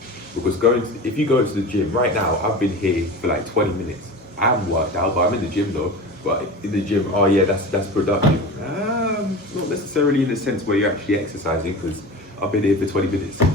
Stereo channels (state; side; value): normal; both; correlation 0.32